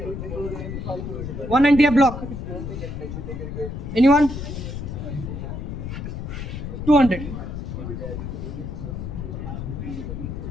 190 F block anyone 200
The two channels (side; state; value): left; noise; rumble, 6 dB below the sound